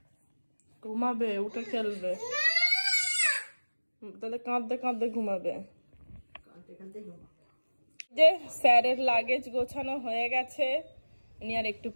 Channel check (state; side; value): inverted; both; correlation -1.00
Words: ঘুমাবে, উঠে খেলবে। তাহলে কাঁদতে কাঁদতে ঘুমাবে। যে স্যারের লাগেজ গোছানো হয়ে গেছে, উনি আর একটু